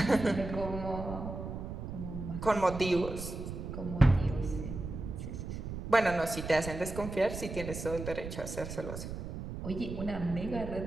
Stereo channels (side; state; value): right; noise; rumble, 7 dB below the sound